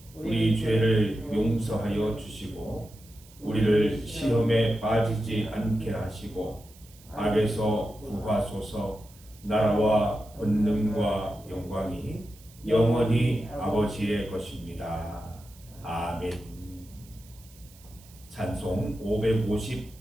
우리 죄를 용서하여 주시고 우리를 시험에 빠지지 않게 하시고 악에서 구하소서. 나라와 권능과 영광이 영원히 아버지의 것입니다. 아멘. 찬송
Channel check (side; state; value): right; noise; hiss, 24 dB below the sound